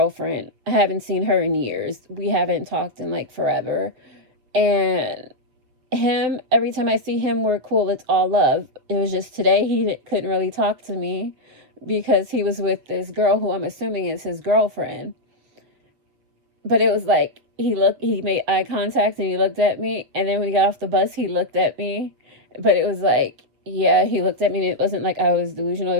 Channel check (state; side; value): late; left; 7.5 ms